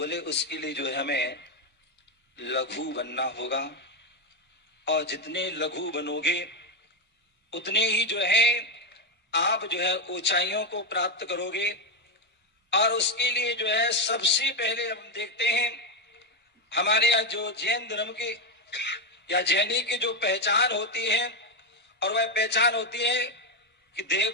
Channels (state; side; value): normal; both; correlation 0.06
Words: उसके लिए जो है हमें लघु बनना होगा और जितने लघु बनोगे उतने ही जो है आप जो है ऊंचाइयों को प्राप्त करोगे। और उसके लिए जो है सबसे पहले हम देखते हैं हमारे यहाँ जो जैन धर्म की या जैनी की जो पहचान होती है और वह पहचान होती है कि